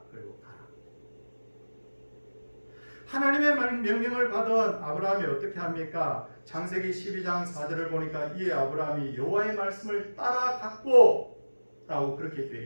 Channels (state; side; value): inverted; both; correlation -1.00